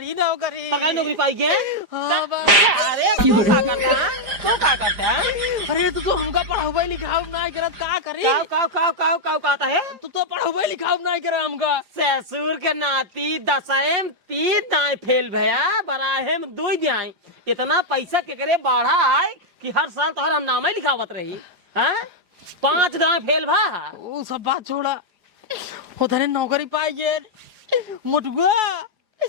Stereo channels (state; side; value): late; left; 4.9 ms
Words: नौकरी। सरकारी नौकरी पाई के? हाँ अरे तू क्या करता है? तू क्या करता है? अरे तो हमका पढ़ाई लिखाऊ ना करत का करी? काव कहता है? तू तो पढ़ाई लिखाऊ ना करे हमका। ससुर के नाती 10 3 दाएं फेल भया, बराहे में 2 दाएं। इतना पैसा के करे बढ़ा है कि हर साल तो हम नाम ही लिखावत रही। हाँ 5 दाएं फेल भा। वो सब बात छोड़ा, वो धने नौकरी पाई गए मुटुआ